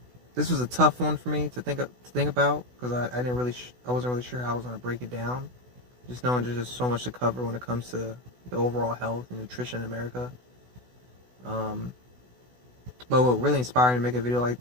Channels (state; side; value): late; left; 16 ms